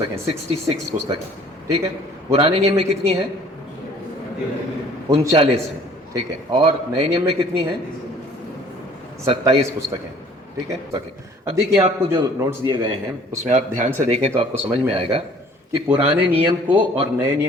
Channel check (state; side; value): normal; both; correlation 0.54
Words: 66 पुस्तकें, ठीक है। पुराने नियम में कितनी है? 39 है, ठीक है। और नए नियम में कितनी है? 27 पुस्तकें, ठीक है। ओके, अब देखिए आपको जो नोट्स दिए गए हैं उसमें आप ध्यान से देखें तो आपको समझ में आएगा कि पुराने नियम को और नए